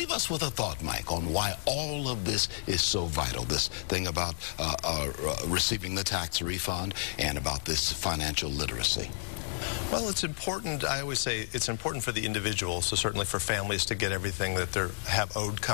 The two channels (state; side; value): silent; right; digital silence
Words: us with a thought, Mike, on why all of this is so vital, this thing about receiving the tax refund and about this financial literacy. Well, it's important. I always say it's important for the individuals, so certainly for families to get everything that they have owed